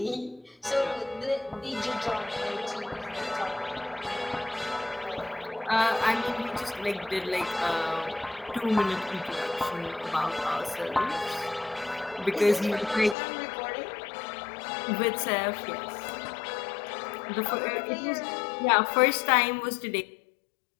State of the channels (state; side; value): drops out; right; at 13.2 s